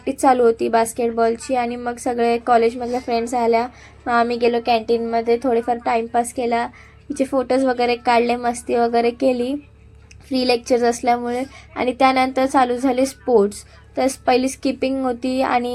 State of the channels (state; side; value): identical; both; correlation 1.00